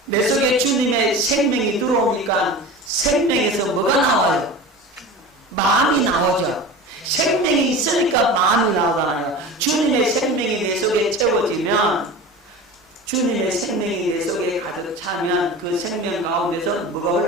내 속에 주님의 생명이 들어오니까 생명에서 뭐가 나와요? 마음이 나오죠. 생명이 있으니까 마음이 나오잖아요. 주님의 생명이 내 속에 채워지면, 주님의 생명이 내 속에 가득 차면 그 생명 가운데서 뭐가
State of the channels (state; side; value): normal; both; correlation 0.33